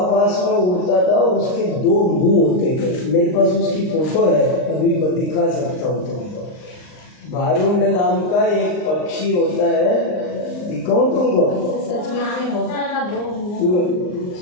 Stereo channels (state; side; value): late; right; 39 ms